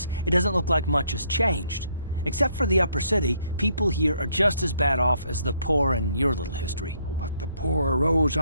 it doesn't look like much has changed. Except for the upper city, people here are just as bad off as the poor in your little history. But the poor rose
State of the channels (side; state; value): both; inverted; correlation -0.69